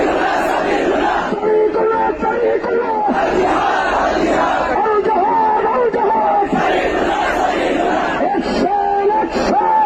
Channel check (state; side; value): identical; both; correlation 1.00